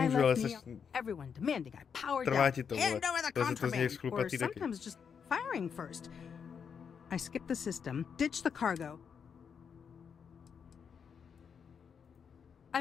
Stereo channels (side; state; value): right; quieter; 6.8 dB